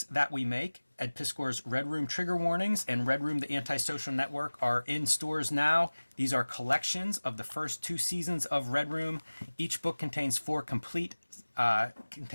that we make. Ed Piskor's Red Room Trigger Warnings and Red Room The Antisocial Network are in stores now. These are collections of the first 2 seasons of Red Room. Each book contains 4 complete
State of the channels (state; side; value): inverted; both; correlation -1.00